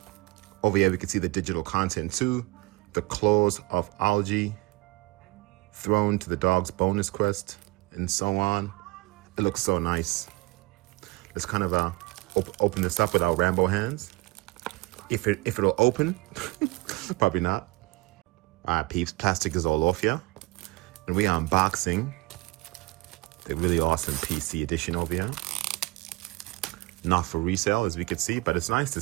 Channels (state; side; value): quieter; left; 22.5 dB